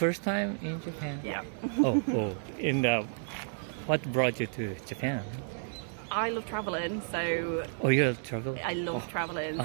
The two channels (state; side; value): silent; left; digital silence